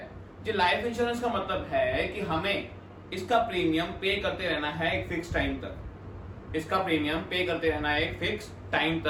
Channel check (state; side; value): identical; both; correlation 1.00